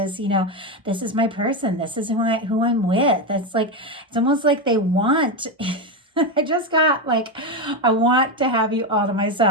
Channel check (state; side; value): normal; both; correlation 0.11